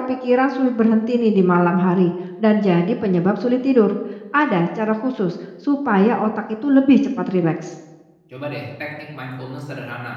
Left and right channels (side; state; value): both; identical; correlation 1.00